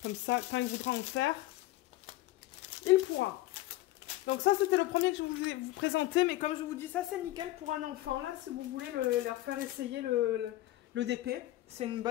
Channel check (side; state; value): right; quieter; 16.4 dB